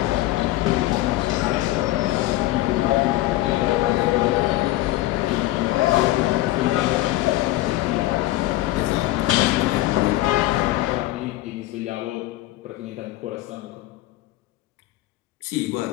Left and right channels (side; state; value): right; quieter; 16.8 dB